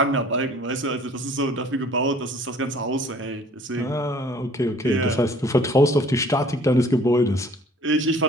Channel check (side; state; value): both; normal; correlation 0.53